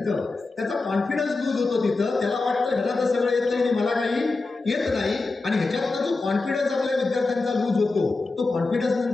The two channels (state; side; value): quieter; right; 3.6 dB